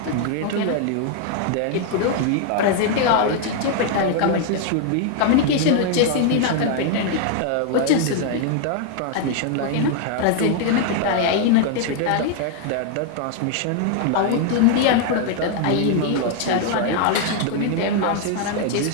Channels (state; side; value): different; both; correlation 0.00